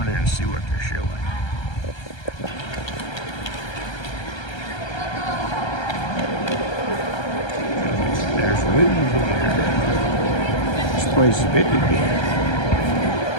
in there and see what they're showing. There's movies here. This place is big again.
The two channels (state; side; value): late; right; 1.3 ms